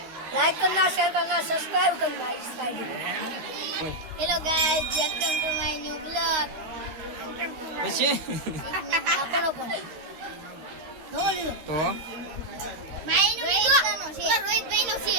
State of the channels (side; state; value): left; late; 13 ms